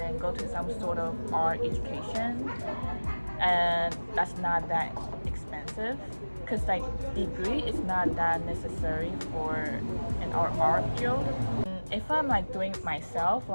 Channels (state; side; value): inverted; both; correlation -1.00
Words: go to some sort of art education, and that's not that expensive because like degree is not that necessary for an art field. If I'm like doing it myself,